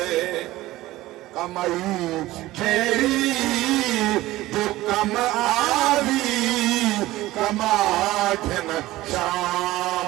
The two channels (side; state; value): left; quieter; 17.1 dB